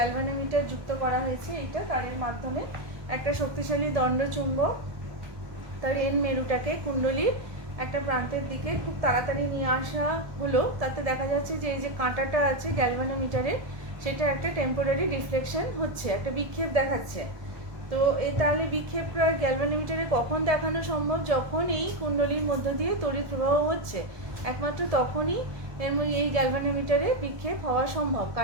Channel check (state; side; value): late; left; 1.7 ms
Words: যুক্ত করা হয়েছে। এইটা তারের মাধ্যমে একটা শক্তিশালী দণ্ড চুম্বক তার এন মেরুটাকে কুণ্ডলীর একটা প্রান্তের দিকে খুব তাড়াতাড়ি নিয়ে আসা হলো। তাতে দেখা যাচ্ছে যে এই যে কাঁটাটা আছে গ্যালভানোমিটারের, সেটা একটা টেম্পোরারি রিফ্লেকশন হচ্ছে, একটা বিক্ষেপ দেখাচ্ছে। তো তাহলে বিক্ষেপটা গ্যালভানোমিটারে কখন দেখানো সম্ভব? যখন এই কুণ্ডলীর মধ্য দিয়ে তড়িৎ প্রবাহ হচ্ছে, একমাত্র তখনই এই গ্যালভানোমিটারে বিক্ষেপ হওয়া সম্ভব,